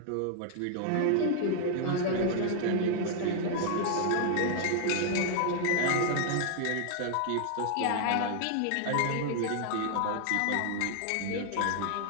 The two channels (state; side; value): different; both; correlation 0.00